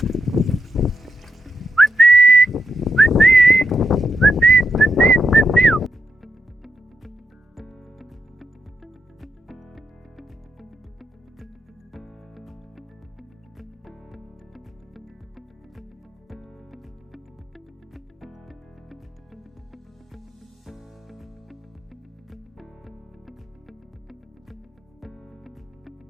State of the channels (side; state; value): both; normal; correlation 0.83